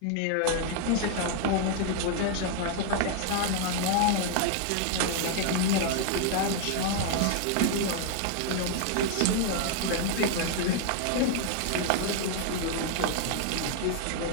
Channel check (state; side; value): different; both; correlation 0.00